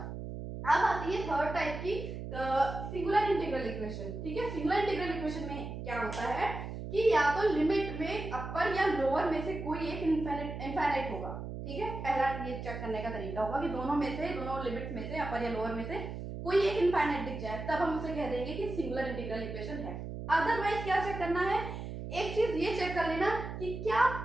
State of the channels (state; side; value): noise; right; hum, 7 dB below the sound